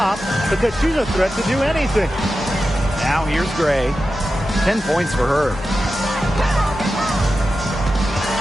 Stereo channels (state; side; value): normal; both; correlation 0.92